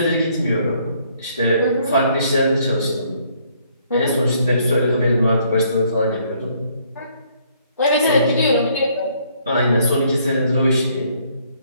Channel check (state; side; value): inverted; both; correlation -0.66